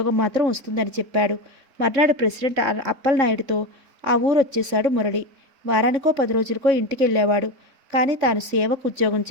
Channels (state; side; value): late; left; 3.6 ms